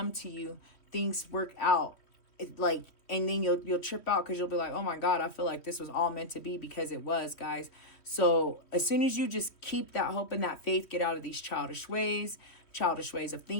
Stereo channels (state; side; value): late; right; 3.1 ms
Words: to you, things work out. And then you'll trip out because you'll be like, oh my God, I feel like this was all meant to be, because it was, guys. So as soon as you just keep that hope and that faith, get out of these childish ways of